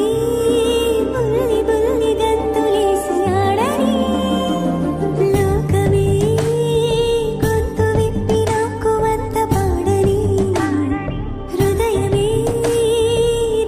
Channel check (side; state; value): both; identical; correlation 1.00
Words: బుల్లి బుల్లి గంతులేసి ఆడని లోకమే గొంతు విప్పి నాకు వంత పాడని హృదయమే